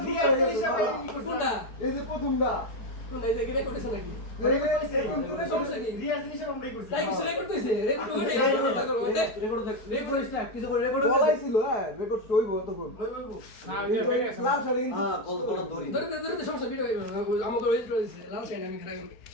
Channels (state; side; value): late; right; 4.7 ms